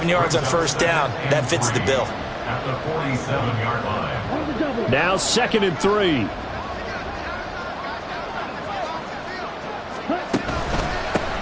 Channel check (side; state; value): both; identical; correlation 1.00